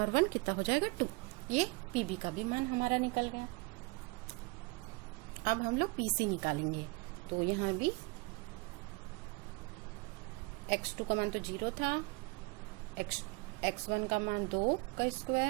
कितना हो जाएगा 2। ये pb का भी मान हमारा निकल गया। अब हम लोग pc निकालेंगे। तो यहाँ भी x2 का मान तो 0 था, x1 का मान 2 का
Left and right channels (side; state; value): left; quieter; 26.5 dB